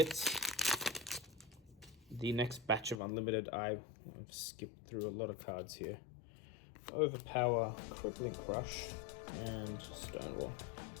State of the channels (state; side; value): drops out; right; at 3.0 s